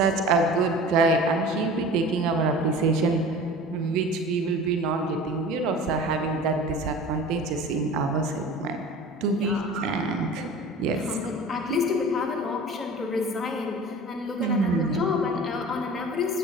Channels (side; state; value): both; normal; correlation 0.40